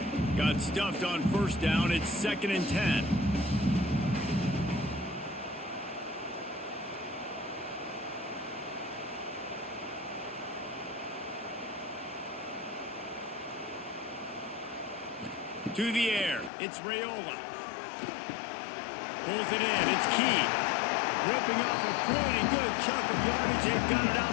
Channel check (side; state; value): right; drops out; at 16.5 s